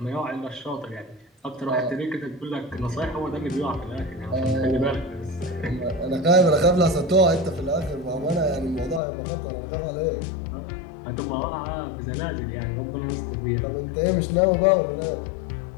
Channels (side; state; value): right; drops out; at 9.0 s